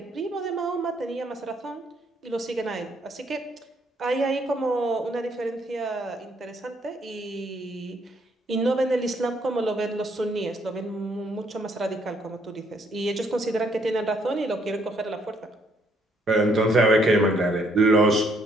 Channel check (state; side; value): normal; both; correlation 0.69